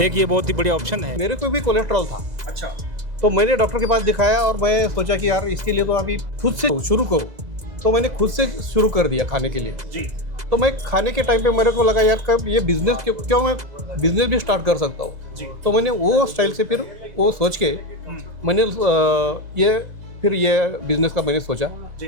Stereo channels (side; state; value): left; late; 2.0 ms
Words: एक ये बहुत ही बढ़िया ऑप्शन है। मेरे को भी कोलेस्ट्रॉल था। अच्छा, तो मैंने डॉक्टर के पास दिखाया और मैं सोचा कि यार इसके लिए तो अभी खुद से शुरू करूँ, तो मैंने खुद से शुरू कर दिया खाने के लिए जी। तो मैं खाने के टाइम पे मेरे को लगा यार कब ये बिजनेस क्यों मैं बिजनेस भी स्टार्ट कर सकता हूँ। तो मैंने वो स्टाइल से फिर वो सोच के मैंने ये बिजनेस का मैंने सोचा